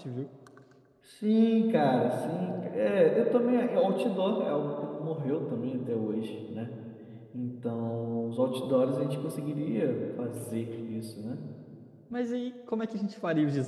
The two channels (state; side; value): identical; both; correlation 1.00